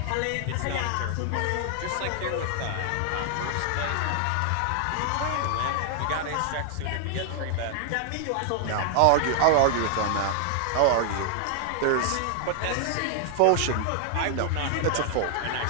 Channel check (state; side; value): different; both; correlation 0.00